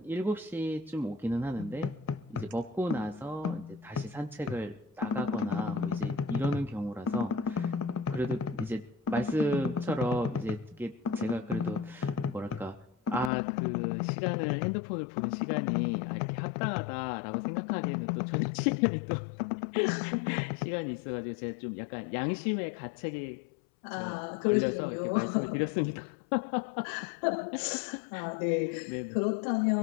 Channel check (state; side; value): drops out; right; at 13.3 s